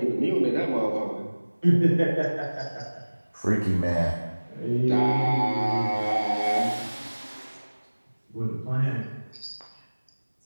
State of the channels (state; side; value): inverted; both; correlation -1.00